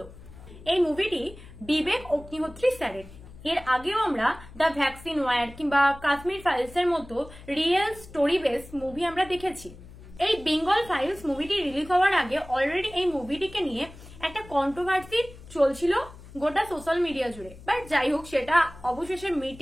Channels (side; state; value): left; noise; hum, 18 dB below the sound